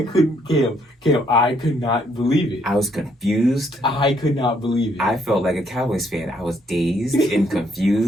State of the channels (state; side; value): normal; both; correlation 0.70